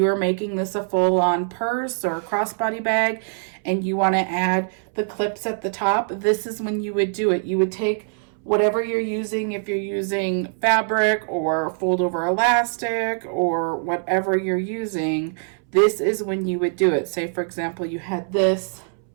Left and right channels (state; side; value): silent; left; 63 dB below the other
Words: are making this a full-on purse or crossbody bag and you want to add the clips at the top, this is when you would do it. You would take whatever you're using, if you're using fabric or fold over elastic or whatever you're using, this is when you would do it. Say, for example, you had this